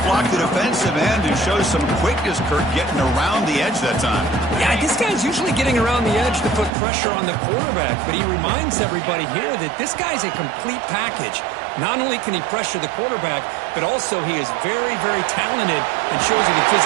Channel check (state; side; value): drops out; left; at 6.7 s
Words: block the defensive end and show some quickness, Kurt, getting around the edge that time. Yeah, this guy's usually getting around the edge to put pressure on the quarterback, but he reminds everybody here that this guy's a complete package. Not only can he pressure the quarterback, but also he is very, very talented and shows you the